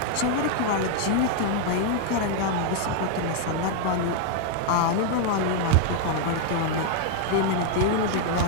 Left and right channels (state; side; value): different; both; correlation 0.00